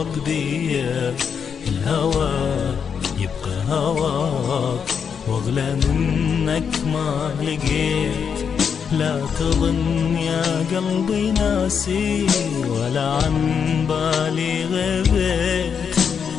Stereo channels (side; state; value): right; quieter; 6.9 dB